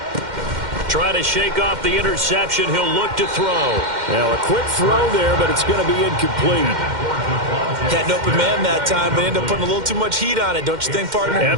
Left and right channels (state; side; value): late; left; 2.1 ms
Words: Try to shake off the interception. He'll look to throw. Now a quick throw there, but it's going to be incomplete. Had an open man that time, but ended up putting a little too much heat on it, don't you think, partner?